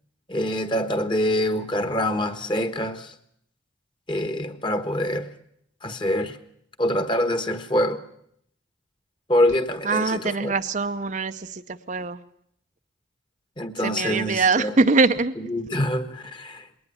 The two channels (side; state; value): both; normal; correlation 0.43